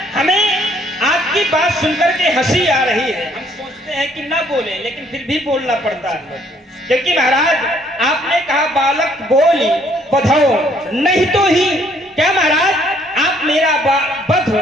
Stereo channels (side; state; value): both; normal; correlation 0.64